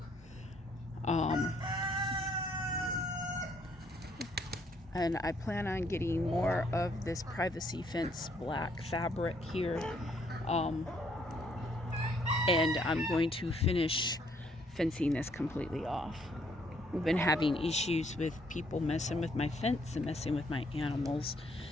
And I plan on getting more of this privacy fence black fabric here. And I'm going to finish fencing this completely off. We've been having issues with people messing with my fence and messing with my animals.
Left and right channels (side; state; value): both; normal; correlation 0.68